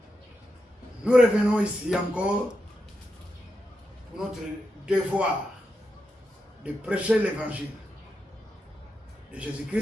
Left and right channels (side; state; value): both; normal; correlation 0.86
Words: Nous revenons ici encore pour notre devoir de prêcher l'évangile de